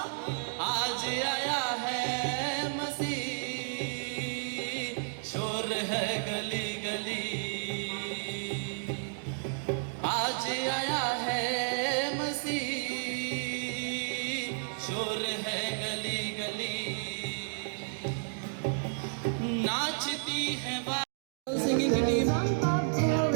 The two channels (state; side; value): silent; left; digital silence